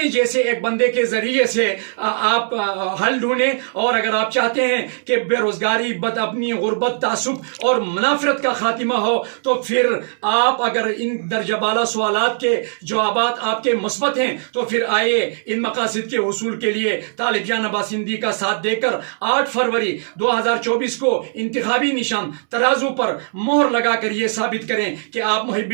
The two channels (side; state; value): left; silent; 66 dB below the other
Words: جیسے ایک بندے کے ذریعے سے آپ حل ڈھونڈیں، اور اگر آپ چاہتے ہیں کہ بے روزگاری، اپنی غربت، تعصب اور منافرت کا خاتمہ ہو، تو پھر آپ اگر ان درجہ بالا سوالات کے جوابات آپ کے مثبت ہیں تو پھر آئیے ان مقاصد کے حصول کے لیے طالب جان عباس سندھی کا ساتھ دے کر 8 فروری 2024 کو انتخابی نشان ترازو پر مہر لگا کر یہ ثابت کریں کہ آپ محب